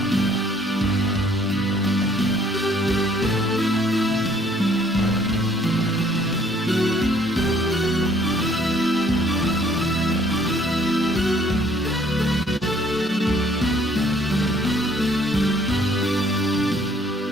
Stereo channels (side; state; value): both; normal; correlation 0.61